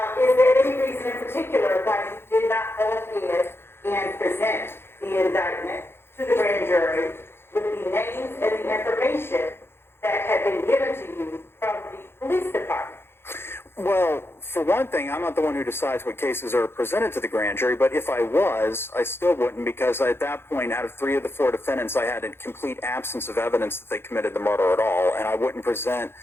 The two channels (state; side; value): late; right; 0.11 ms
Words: Is there any reason in particular why you did not go ahead and present the indictment to the grand jury with the names and the information that had been given to you from the police department? Well, for one thing, I'm not the one who decides what cases are presented to the grand jury, but if I was, I still wouldn't, because at that point, out of 3 of the 4 defendants, I had a complete absence of evidence that they committed the murder at all, and I wouldn't present